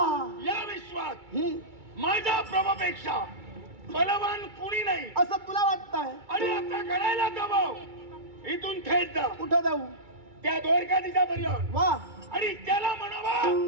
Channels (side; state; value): left; late; 2.3 ms